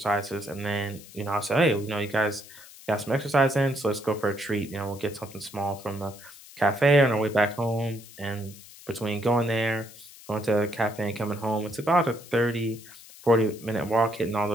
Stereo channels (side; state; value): left; noise; hiss, 19 dB below the sound